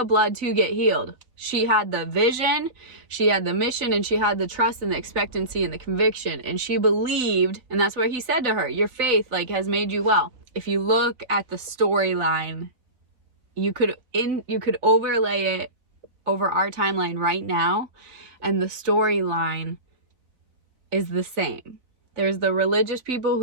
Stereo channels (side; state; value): left; late; 4.0 ms